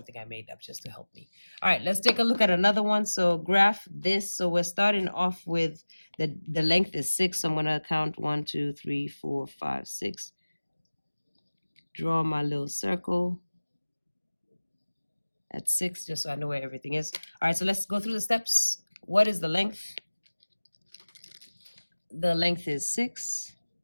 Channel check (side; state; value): both; inverted; correlation -1.00